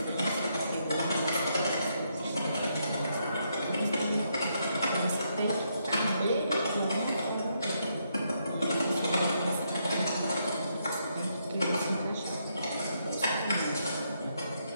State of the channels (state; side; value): inverted; both; correlation -0.77